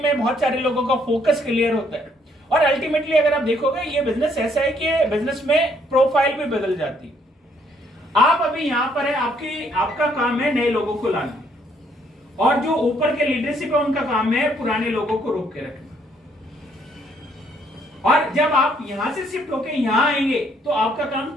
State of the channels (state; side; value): normal; both; correlation 0.68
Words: में बहुत सारे लोगों का फोकस क्लियर होता है, और अल्टीमेटली अगर आप देखोगे ये बिजनेस ऐसा है कि बिजनेस में प्रोफाइल भी बदल जाती है। आप अभी यहां पर है, आपका काम है नए लोगों को लाना, और जो ऊपर के लीडरशिप है उनका काम है पुराने लोगों को रोक के रखना। और जब आप यहां से शिफ्ट होके यहां आएंगे तो आपका काम